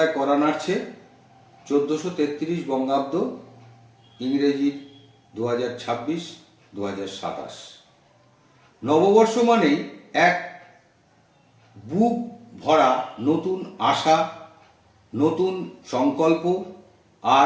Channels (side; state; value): both; identical; correlation 1.00